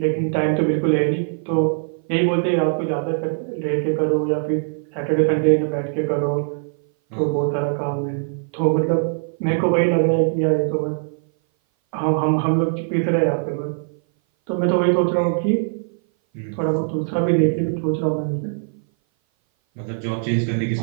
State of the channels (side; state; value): left; silent; 58 dB below the other